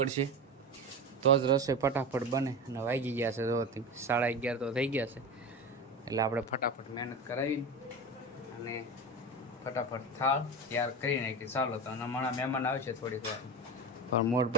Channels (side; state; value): both; normal; correlation 0.24